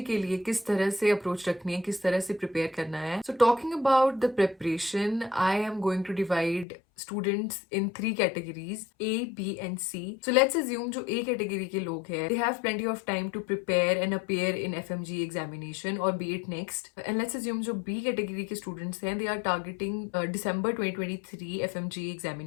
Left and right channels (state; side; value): drops out; right; at 6.7 s